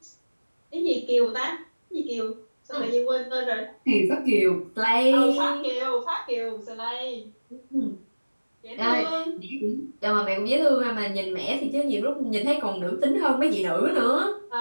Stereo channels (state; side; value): inverted; both; correlation -1.00